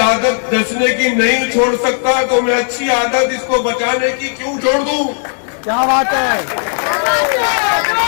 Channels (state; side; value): silent; right; 61 dB below the other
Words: नचने की नहीं छोड़ सकता तो मैं अच्छी आदत इसको बचाने की क्यों छोड़ दूं। क्या बात है।